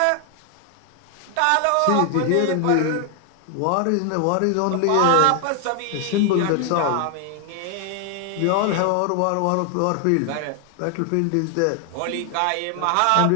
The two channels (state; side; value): different; both; correlation 0.00